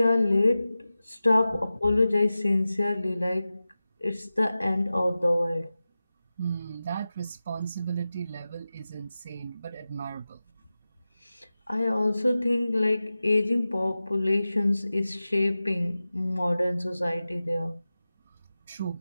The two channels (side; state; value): both; inverted; correlation -0.95